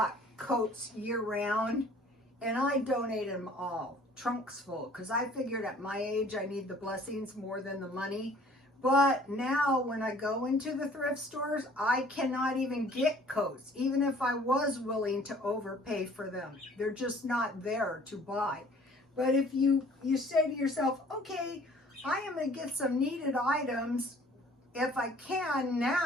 coats year-round, and I donated them all, trunks full, because I figured at my age I need the blessings more than the money. But now when I go into the thrift stores, I cannot even get coats, even if I was willing to overpay for them. They're just not there to buy. But if you say to yourself, okay, I am going to get some needed items if I can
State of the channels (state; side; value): normal; both; correlation 0.54